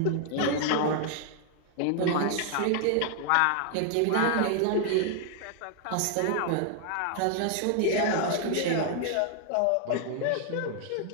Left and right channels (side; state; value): both; different; correlation 0.00